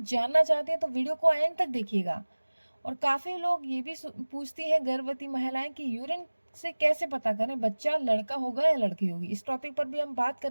जानना चाहते हैं तो वीडियो को एंड तक देखिएगा। और काफ़ी लोग ये भी पूछती हैं गर्भवती महिलाएं कि यूरिन से कैसे पता करें बच्चा लड़का होगा या लड़की होगी। इस टॉपिक पर भी हम बात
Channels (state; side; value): inverted; both; correlation -1.00